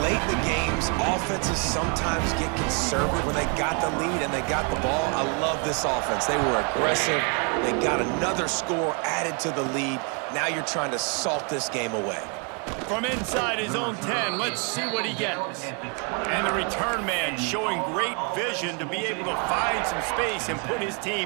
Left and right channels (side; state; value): left; quieter; 36.6 dB